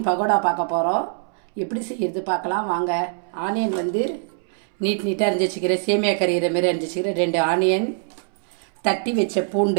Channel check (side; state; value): left; silent; 63 dB below the other